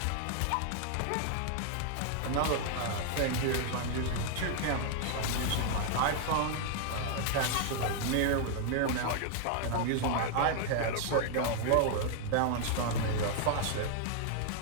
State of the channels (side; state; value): both; different; correlation 0.00